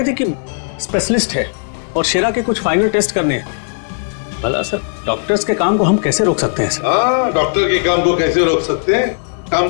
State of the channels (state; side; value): silent; right; digital silence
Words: थे कि स्पेशलिस्ट है और शेरा के कुछ फाइनल टेस्ट करने हैं। भला सर डॉक्टर्स के काम को हम कैसे रोक सकते हैं सर? हाँ, डॉक्टर के काम को कैसे रोक सकते हैं? काम